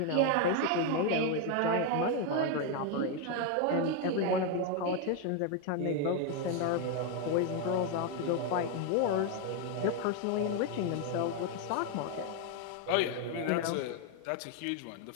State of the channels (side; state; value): both; different; correlation 0.01